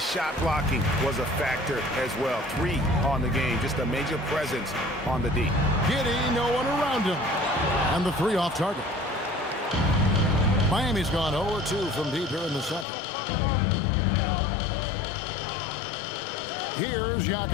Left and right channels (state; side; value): drops out; right; at 12.9 s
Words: shot blocking was a factor as well. 3 on the game, just a major presence on the D. Giddey, no one around him. And the three off target. Miami's gone 0-2 from deep here in the second. Here's